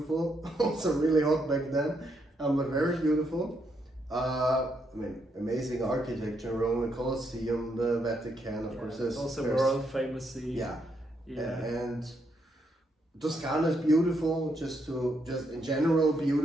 Also really hot back then. But very beautiful. I mean, amazing architecture. Rome, the Colosseum, the Vatican, of course. Also there's- world famous. Yeah. Yeah. And Toscana is beautiful, just in general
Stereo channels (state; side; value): normal; both; correlation 0.77